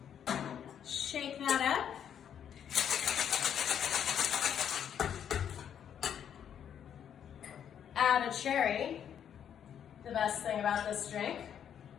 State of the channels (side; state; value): right; quieter; 8.9 dB